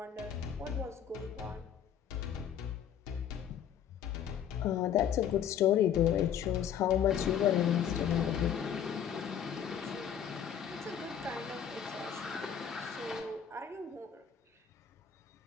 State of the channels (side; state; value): right; quieter; 8.9 dB